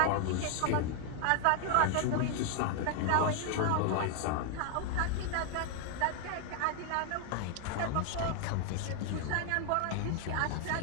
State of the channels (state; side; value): different; both; correlation 0.00